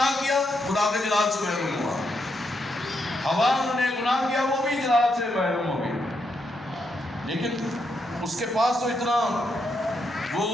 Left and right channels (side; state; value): both; normal; correlation 0.80